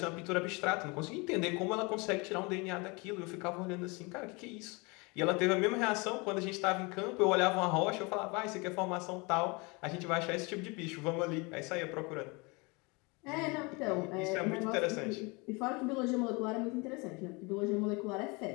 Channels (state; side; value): quieter; right; 27.9 dB